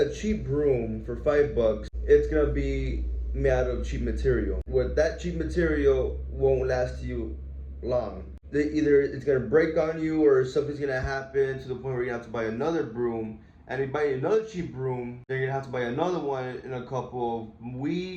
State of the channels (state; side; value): identical; both; correlation 1.00